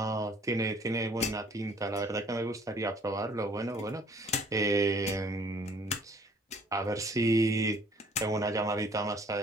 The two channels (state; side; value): normal; both; correlation 0.57